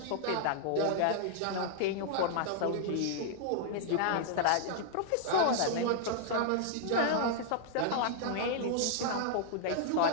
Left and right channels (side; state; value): both; different; correlation -0.01